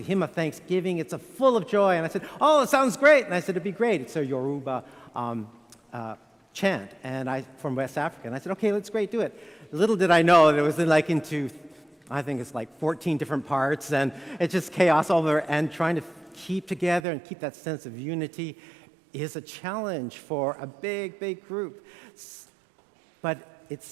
hymn of thanksgiving. It's full of joy. And I said, oh, it sounds great. And I said, it'd be great. It's a Yoruba chant and from West Africa. And I said, okay, that's great, do it. Little did I know that it was into, I think it's like 14 different parts, and it's just chaos all over. And trying to keep together and keep that sense of unity is a challenge for a big, big group. But it's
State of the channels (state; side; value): drops out; left; at 17.0 s